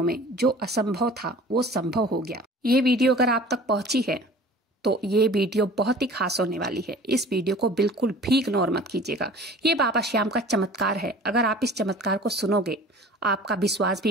में जो असंभव था वो संभव हो गया। ये वीडियो अगर आप तक पहुंची है तो ये वीडियो बहुत ही खास होने वाली है। इस वीडियो को बिल्कुल भी इग्नोर मत कीजिएगा। ये बाबा श्याम का चमत्कार है। अगर आप इस चमत्कार को सुनोगे, आपका विश्वास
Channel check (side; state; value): both; normal; correlation 0.45